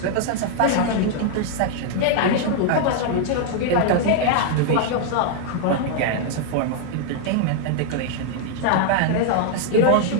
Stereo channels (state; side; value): different; both; correlation 0.00